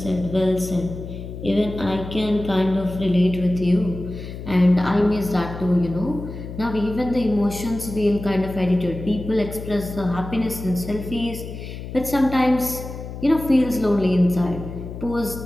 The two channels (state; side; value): noise; left; hum, 10 dB below the sound